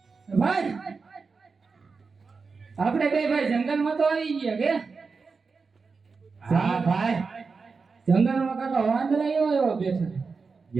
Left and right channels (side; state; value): left; quieter; 4.7 dB